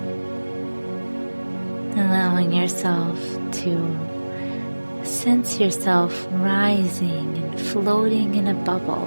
Allowing yourself to sense yourself rising and floating in a bubble.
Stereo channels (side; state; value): both; inverted; correlation -1.00